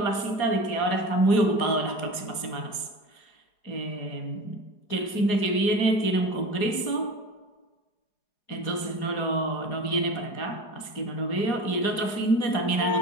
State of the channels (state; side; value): late; right; 4.8 ms